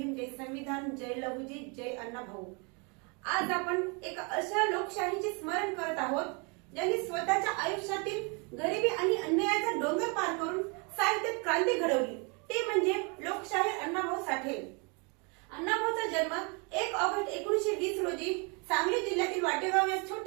जय संविधान, जय लहुजी, जय अण्णाभाऊ। आज आपण एक अशा लोकशाहीचे स्मरण करत आहोत ज्यांनी स्वतःच्या आयुष्यातील गरिबी आणि अन्यायाचा डोंगर पार करून साहित्यात क्रांती घडवली, ते म्हणजे लोकशाहीर अण्णाभाऊ साठे। अण्णाभाऊचा जन्म 1 ऑगस्ट 1920 रोजी सांगली जिल्ह्यातील वाटेगाव या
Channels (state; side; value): quieter; left; 33.4 dB